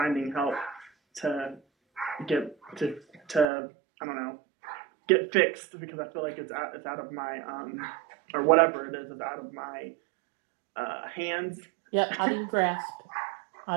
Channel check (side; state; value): left; drops out; at 3.5 s